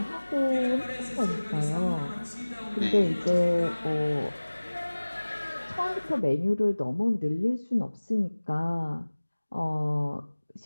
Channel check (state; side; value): inverted; both; correlation -1.00